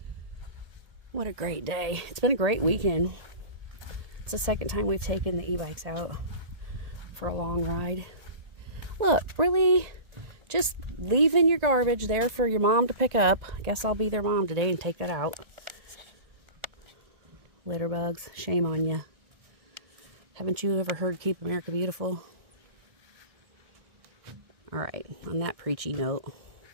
What a great day. It's been a great weekend. It's the second time we've taken the e-bikes out for a long ride. Look, really, just leaving your garbage there for your mom to pick up. I guess I'll be their mom today and take that out. Litter bugs, shame on you. Haven't you ever heard Keep America Beautiful? All right, on that preachy note,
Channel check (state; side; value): late; left; 1.9 ms